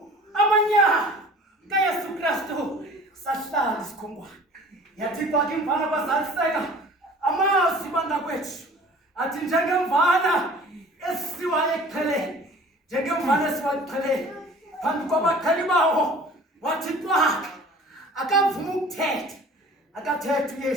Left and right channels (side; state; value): both; normal; correlation 0.46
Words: amanyala kaYesu Kristu sahlala isikhonkwane yathi kwakhe imvana bazaliseka amazwi bangakwethu athi njengemvana esiwa eqheleni njengemvana esiwa eqheleni phambi kwabakhali bawo wathi kwakhe akavuma ukuthetha akathetha